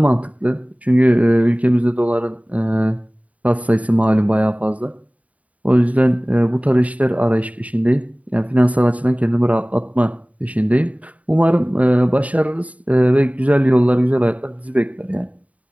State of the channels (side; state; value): left; late; 0.069 ms